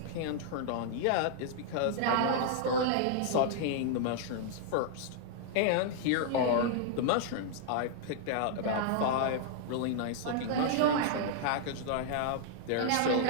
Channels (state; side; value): different; both; correlation -0.01